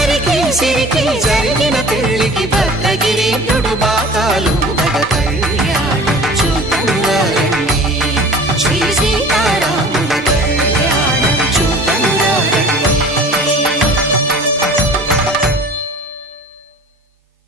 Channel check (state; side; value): normal; both; correlation 0.44